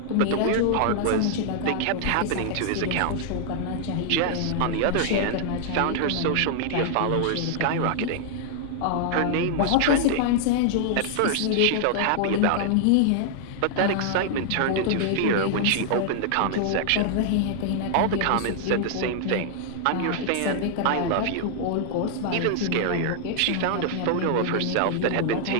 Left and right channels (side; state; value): both; different; correlation -0.01